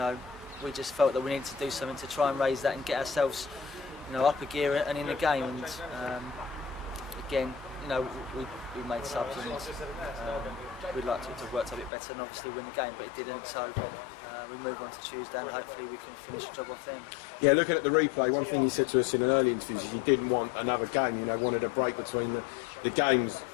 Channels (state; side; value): drops out; right; at 11.9 s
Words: we just felt that we needed to do something to try and raise that and get ourselves up a gear and in the game. And again, we made subs, and we'd like to have worked a bit better and obviously win the game, but it didn't. So we move on to Tuesday, and hopefully we can finish the job off then. Yeah, looking at the replay, one thing you said to us in an early interview is you didn't want another game. Wanted a break between the games.